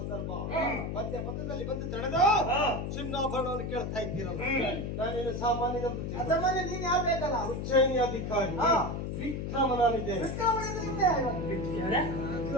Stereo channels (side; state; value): left; noise; hum, 3 dB below the sound